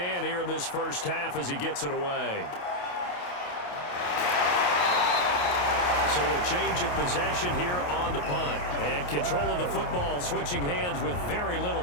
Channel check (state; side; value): late; right; 28 ms